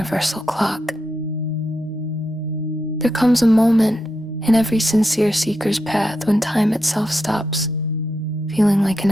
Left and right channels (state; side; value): normal; both; correlation 0.85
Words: clock. There comes a moment in every sincere seeker's path when time itself stops feeling like an